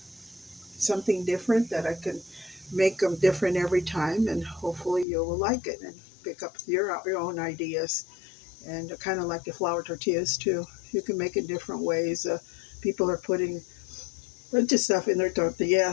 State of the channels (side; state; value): right; drops out; at 5.1 s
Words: something different that I can make them different every time, and hopefully you will like it and pick up your own ideas and kind of like the flour tortillas too. You can make it different ways. People are putting a bunch of stuff in their